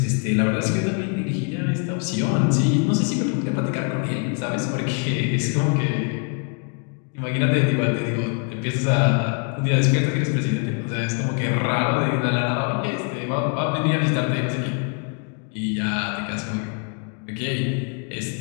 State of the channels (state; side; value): quieter; right; 37.8 dB